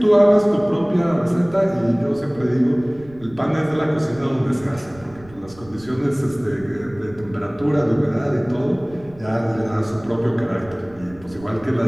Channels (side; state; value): right; noise; rumble, 22 dB below the sound